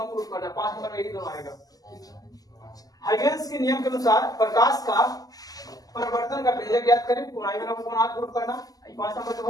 प्रूफ करना है, 5 नंबर में यही दोनों आएगा। हाइगेंस के नियम के अनुसार प्रकाश का परिवर्तन का व्यंजक ज्ञात करें, कौन आई बराबर कौन आर प्रूफ करना, 5 नंबर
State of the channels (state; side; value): late; right; 0.17 ms